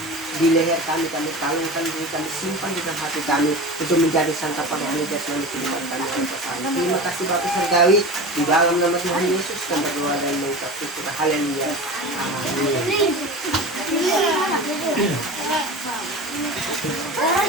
leher kami kalungkan kami simpan di dalam hati kami untuk menjadi santapan rohani jasmani kehidupan kami yang bersama. Terima kasih Bapa Surgawi, di dalam nama Tuhan Yesus kami berdoa dan mengucap syukur. Haleluya. Amin.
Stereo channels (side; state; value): both; normal; correlation 0.31